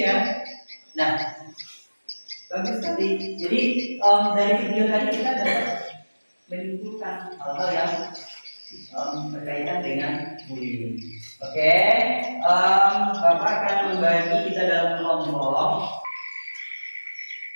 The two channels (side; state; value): both; inverted; correlation -1.00